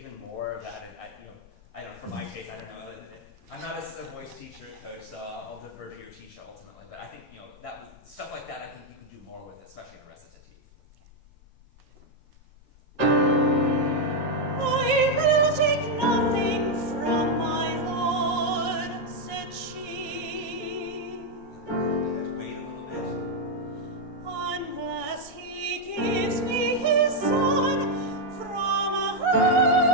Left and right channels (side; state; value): both; normal; correlation 0.01